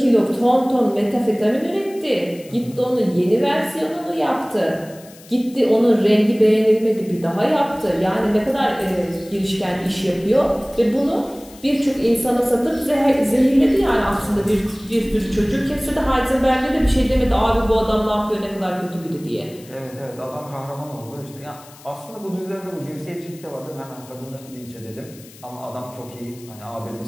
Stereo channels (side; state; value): left; noise; hiss, 22 dB below the sound